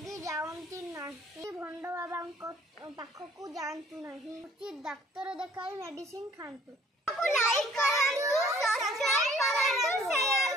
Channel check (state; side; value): normal; both; correlation 0.57